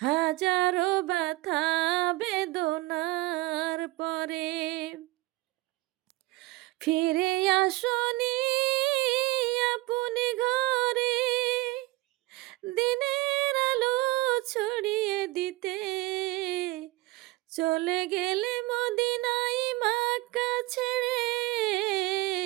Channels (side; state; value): left; quieter; 20.6 dB